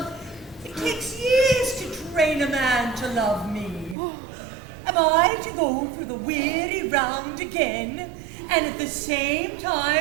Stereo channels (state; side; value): drops out; left; at 4.0 s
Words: It takes years again, and at the same